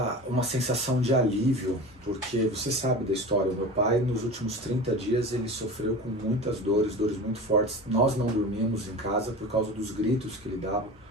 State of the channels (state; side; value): normal; both; correlation 0.32